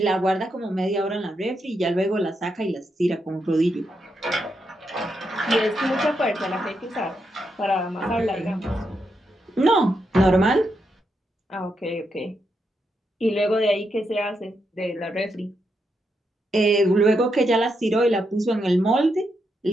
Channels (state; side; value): normal; both; correlation 0.83